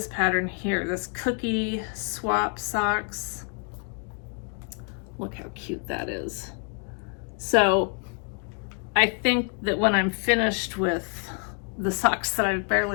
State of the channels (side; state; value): right; quieter; 39.2 dB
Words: pattern here, this cookie swap socks. Look how cute that is. So I think that when I'm finished with the socks that I've